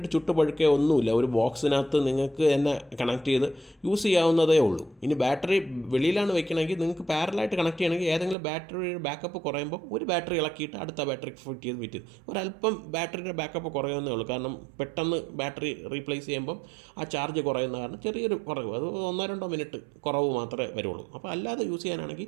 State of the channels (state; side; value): drops out; left; at 8.3 s